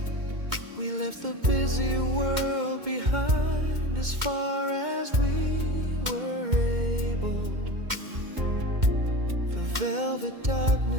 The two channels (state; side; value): late; left; 2.1 ms